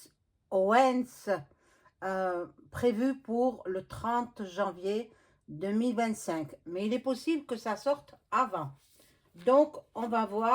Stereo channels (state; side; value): identical; both; correlation 1.00